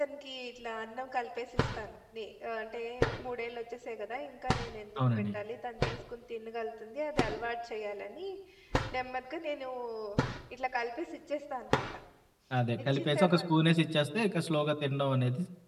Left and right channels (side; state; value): both; identical; correlation 1.00